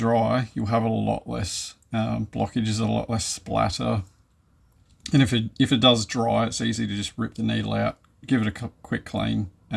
you'll have a lot less blockages, a lot less splatter. And if it does dry, it's easy to just rip the needle out, give it a quick clean,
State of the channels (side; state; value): both; identical; correlation 1.00